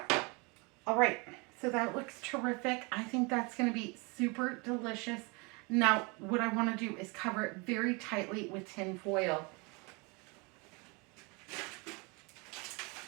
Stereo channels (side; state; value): left; quieter; 29.3 dB